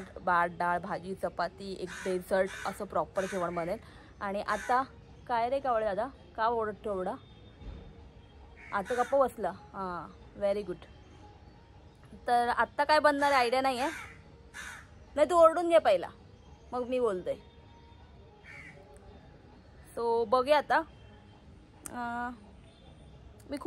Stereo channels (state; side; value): identical; both; correlation 1.00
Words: भात डाळ भाजी चपाती एक डेझर्ट असं प्रॉपर जेवण बनेल. आणि आता काय रे कावळे दादा, का ओरडतो एवढा? आता गप्प बसला. हां, व्हेरी गुड. तर आत्ता काय बनणार आहे आयडिया नाही आहे. नाही, तू ओरडून घे पहिला, मग मी बोलते. सो बघूया आता. मी